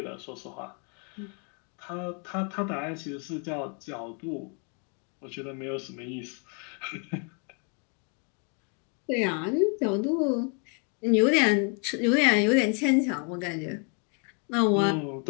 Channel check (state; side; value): quieter; right; 38.6 dB